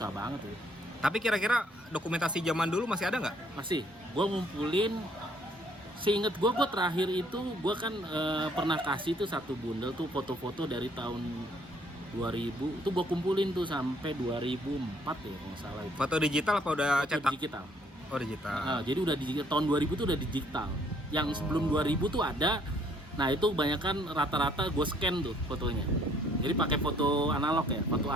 banget tuh. Tapi kira-kira dokumentasi zaman dulu masih ada nggak? Masih, gua ngumpulin. Seinget gua terakhir itu gua kan pernah kasih tuh satu bundel tuh foto-foto dari tahun 2000. Itu gua kumpulin tuh sampai 2004 ya kalau nggak salah itu. Foto digital apa udah Foto cetak? digital. Oh, digital. Nah, jadi udah digital, tahun 2000 tuh udah digital. Yang sebelum 2000 tuh ada. Nah, itu kebanyakan rata-rata gue scan tuh fotonya. Jadi pakai foto analog ya, foto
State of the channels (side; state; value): both; normal; correlation 0.64